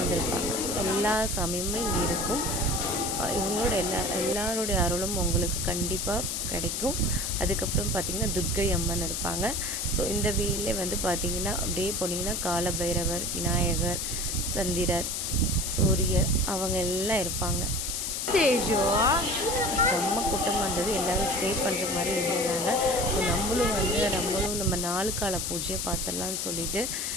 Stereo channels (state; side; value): noise; left; hiss, 2 dB below the sound